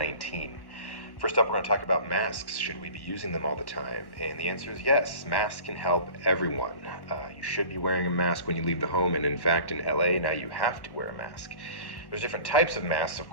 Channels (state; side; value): late; right; 1.1 ms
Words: First up, we're going to talk about masks. Should we be using them all the time? And the answer is yes. Masks can help everyone. You should be wearing a mask when you leave the home, and in fact, in LA, now you have to wear a mask. There's different types of masks, of